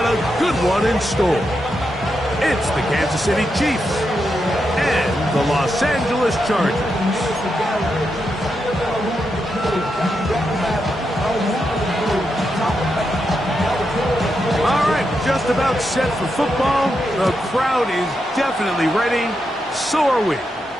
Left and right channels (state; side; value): normal; both; correlation 0.85